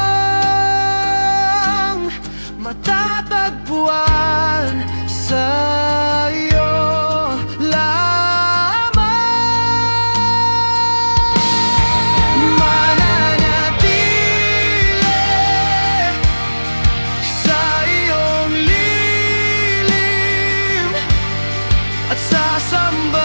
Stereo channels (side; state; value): both; inverted; correlation -1.00